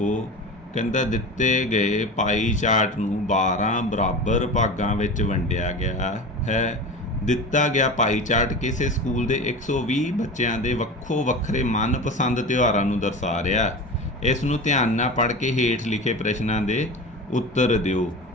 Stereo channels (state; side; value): normal; both; correlation 0.30